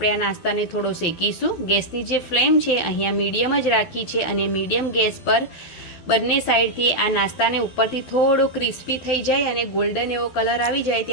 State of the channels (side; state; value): right; late; 12 ms